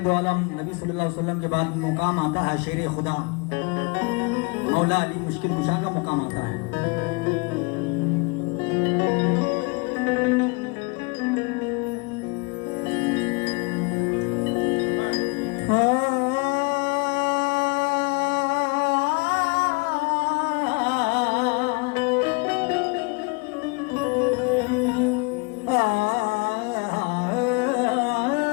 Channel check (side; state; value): right; quieter; 30.7 dB